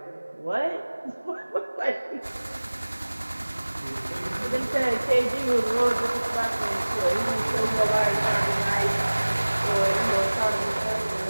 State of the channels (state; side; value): inverted; both; correlation -1.00